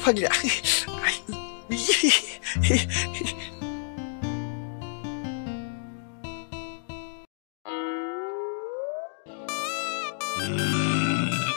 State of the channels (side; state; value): right; silent; digital silence